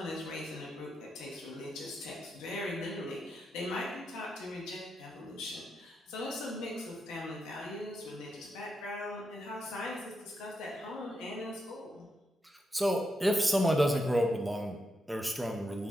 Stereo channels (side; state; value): both; normal; correlation 0.84